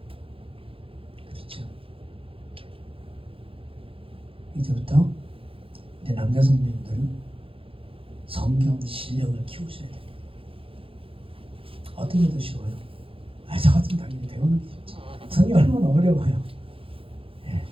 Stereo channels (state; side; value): late; left; 0.27 ms